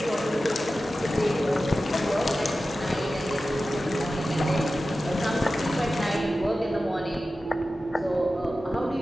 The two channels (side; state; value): both; normal; correlation 0.94